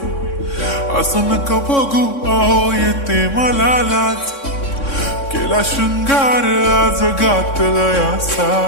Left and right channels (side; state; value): right; late; 3.6 ms